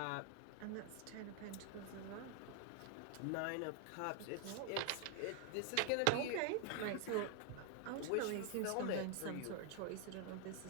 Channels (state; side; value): different; both; correlation 0.00